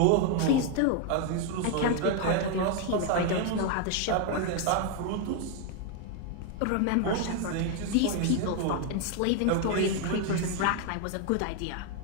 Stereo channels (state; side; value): different; both; correlation 0.01